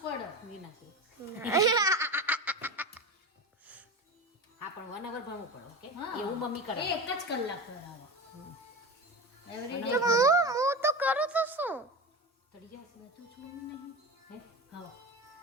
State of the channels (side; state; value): both; normal; correlation 0.26